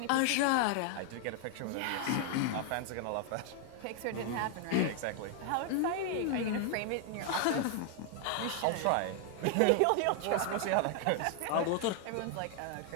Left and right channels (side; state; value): both; different; correlation 0.00